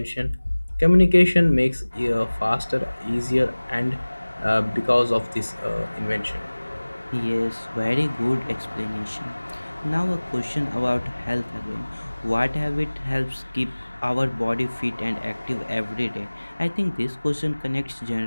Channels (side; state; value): both; inverted; correlation -1.00